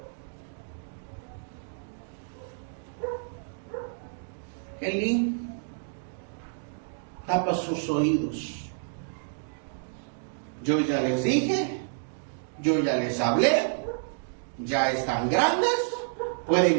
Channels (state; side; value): silent; left; digital silence